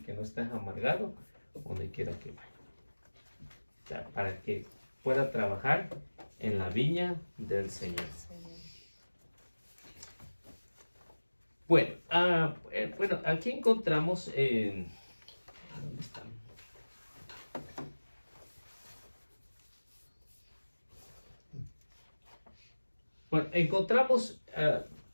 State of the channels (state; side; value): inverted; both; correlation -1.00